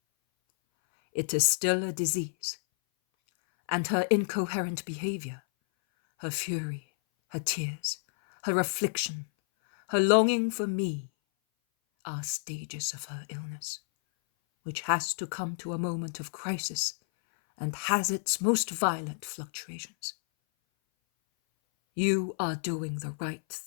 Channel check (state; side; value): silent; right; 58 dB below the other